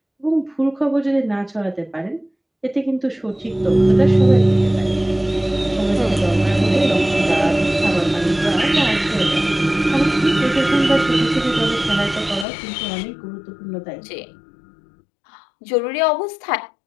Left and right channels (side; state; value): right; drops out; at 12.5 s